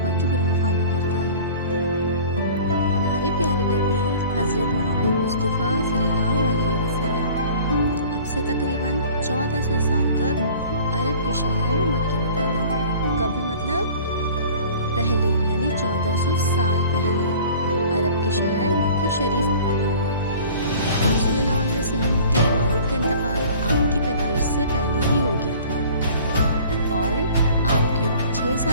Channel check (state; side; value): inverted; both; correlation -0.46